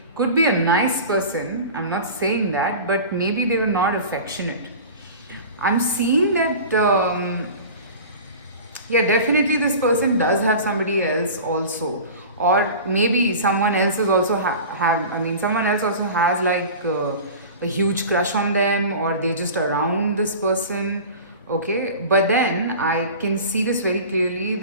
could be a nice person, I'm not saying that, but maybe they were not affectionate. I'm seeing that yeah, definitely this person does have somebody else also, or maybe someone else is also have. I mean, someone else also has like a huge crush on them, or they just around this person. Okay, but then I can see this very clearly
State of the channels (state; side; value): inverted; both; correlation -0.36